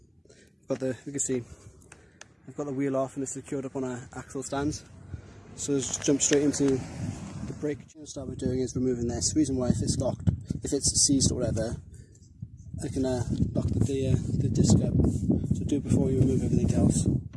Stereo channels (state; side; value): identical; both; correlation 1.00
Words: You can see, I've got the wheel off and it's secured up on our axle stands. So let's just jump straight into the brake. What I'll start with doing is removing this. The reason why, if it's locked, if it's seized or whatever, I can lock the disc up. So do it before you remove everything else.